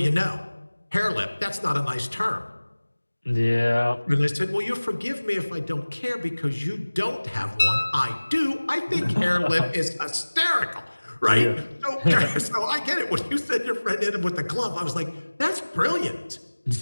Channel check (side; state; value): both; inverted; correlation -1.00